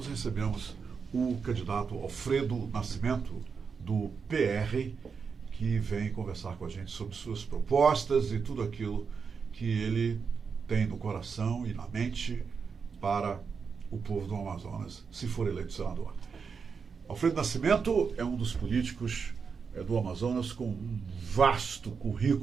recebemos o candidato Alfredo Nascimento, do PR, que vem conversar com a gente sobre suas propostas e tudo aquilo que ele tem no coração e na mente para o povo do Amazonas, se for eleito senador. Alfredo Nascimento é um dos políticos do Amazonas com um vasto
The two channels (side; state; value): left; quieter; 5.7 dB